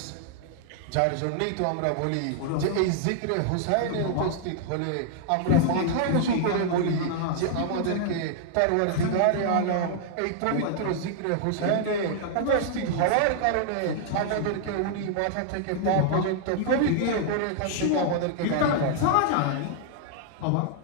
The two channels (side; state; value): both; different; correlation -0.01